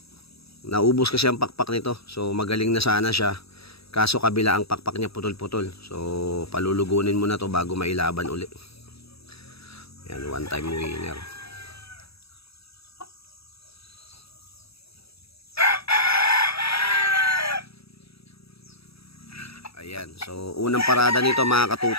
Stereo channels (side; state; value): right; late; 0.77 ms